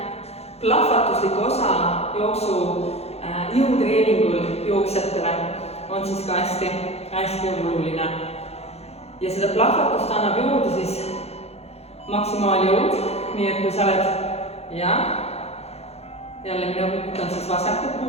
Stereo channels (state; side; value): late; right; 0.30 ms